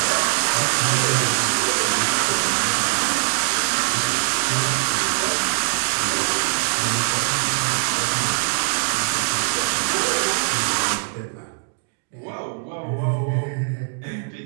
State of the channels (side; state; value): left; silent; digital silence